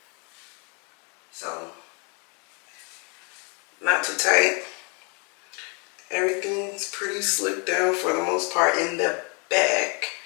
So, not too tight. Everything's pretty slicked down for the most part in the back.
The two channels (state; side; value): quieter; right; 34.0 dB